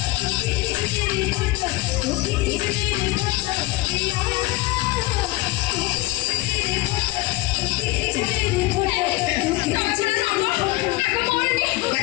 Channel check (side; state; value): right; quieter; 20.0 dB